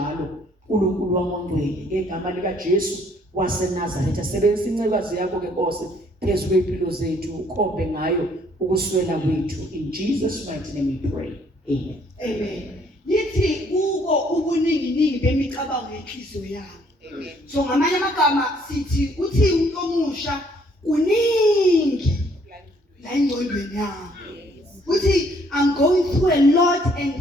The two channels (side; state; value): both; normal; correlation 0.64